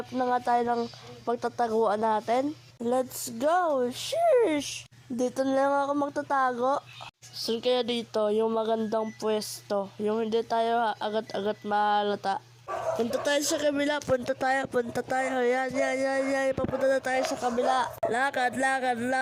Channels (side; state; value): both; identical; correlation 1.00